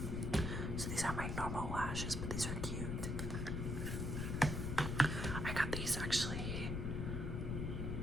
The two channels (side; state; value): left; noise; rumble, 1 dB below the sound